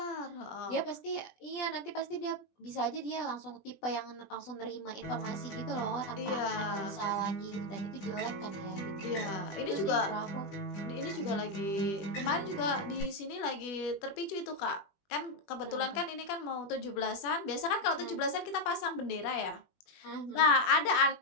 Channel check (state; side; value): late; right; 20 ms